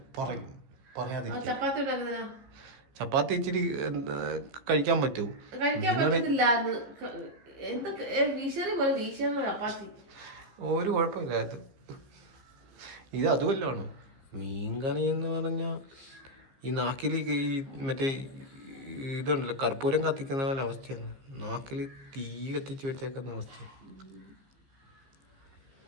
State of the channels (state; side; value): late; left; 15 ms